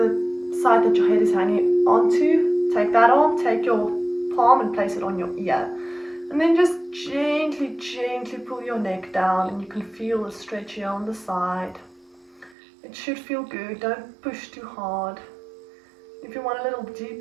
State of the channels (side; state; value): left; drops out; at 12.5 s